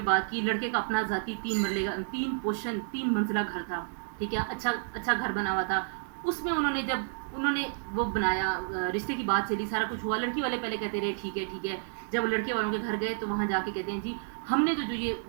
بات کی، لڑکے کا اپنا ذاتی 3 مرلے کا 3 منزلہ گھر تھا، ٹھیک ہے، اچھا گھر بنا ہوا تھا، اس میں انہوں نے وہ بنایا، رشتے کی بات چلی، سارا کچھ ہوا، لڑکی والے پہلے کہتے رہے ٹھیک ہے، جب لڑکے والوں کے گھر گئے تو وہاں جا کے کہتے ہیں جی ہم نے تو جو یہ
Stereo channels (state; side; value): silent; left; digital silence